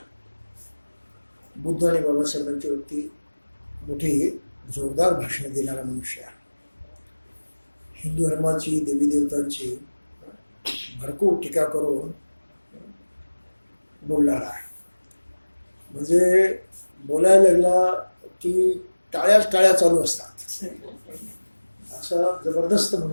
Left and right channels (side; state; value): both; inverted; correlation -1.00